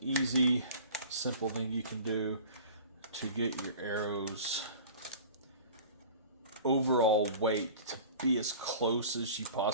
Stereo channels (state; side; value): inverted; both; correlation -0.42